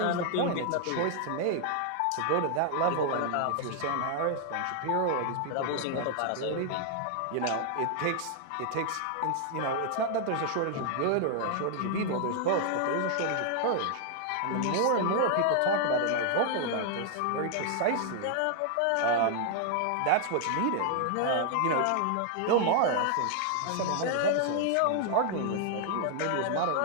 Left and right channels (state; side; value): different; both; correlation 0.00